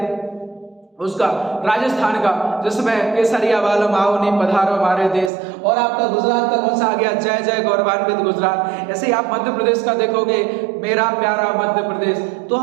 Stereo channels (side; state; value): left; drops out; at 5.3 s